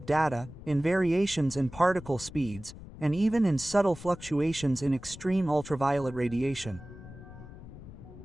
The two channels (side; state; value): left; noise; rumble, 15 dB below the sound